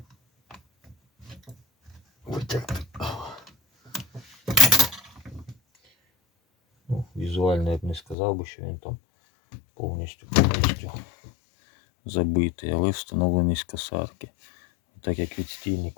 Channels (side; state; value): right; drops out; at 8.2 s